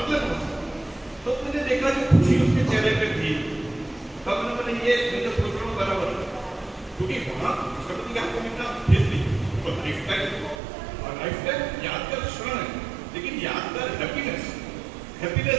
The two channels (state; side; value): drops out; left; at 10.6 s